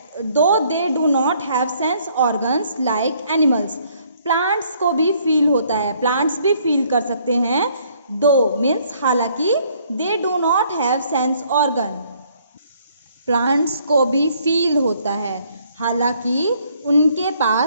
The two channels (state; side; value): inverted; both; correlation -0.64